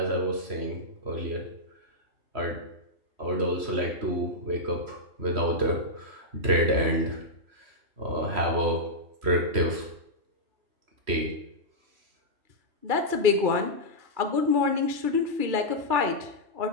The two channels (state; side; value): late; left; 3.1 ms